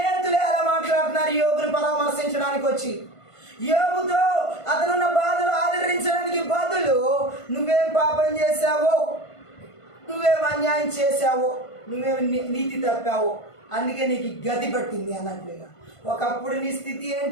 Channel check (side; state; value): right; late; 1.5 ms